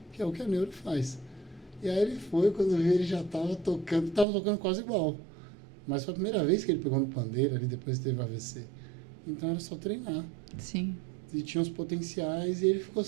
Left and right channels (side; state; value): left; drops out; at 4.2 s